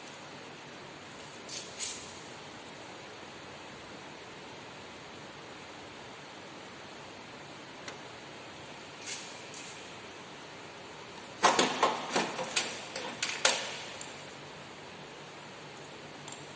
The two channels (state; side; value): identical; both; correlation 1.00